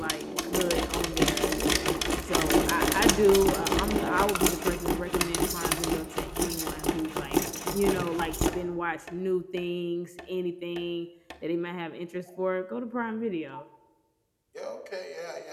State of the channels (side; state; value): both; identical; correlation 1.00